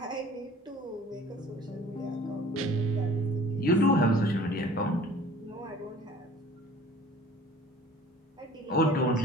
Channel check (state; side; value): normal; both; correlation 0.48